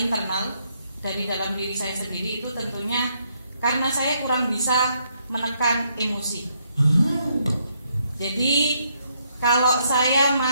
dari dalam diri saya sendiri, itu tentunya karena saya kurang bisa menekan emosi. Jadi kalau saya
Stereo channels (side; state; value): both; inverted; correlation -0.74